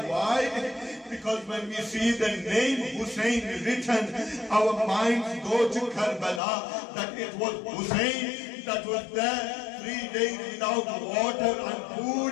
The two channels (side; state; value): right; drops out; at 6.4 s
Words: Why? Because when we see the name Hussain written, our minds go to Karbala, that it was Hussain that was there 3 days without water and